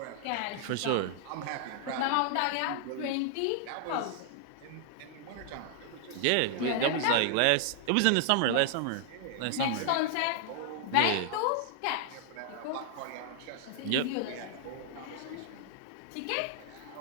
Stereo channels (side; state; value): both; different; correlation 0.00